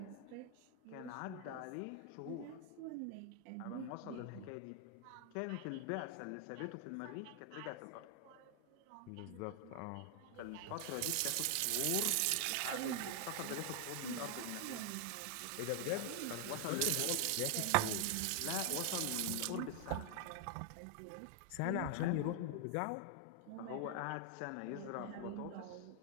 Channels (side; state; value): both; different; correlation 0.00